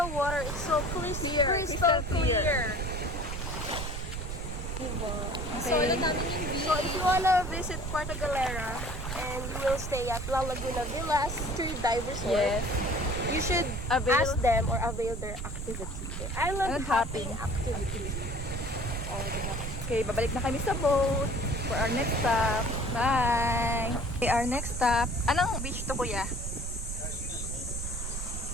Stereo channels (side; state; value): right; noise; rumble, 5 dB below the sound